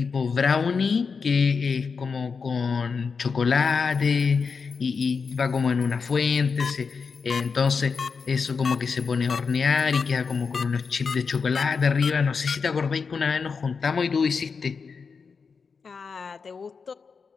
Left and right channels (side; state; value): right; quieter; 5.3 dB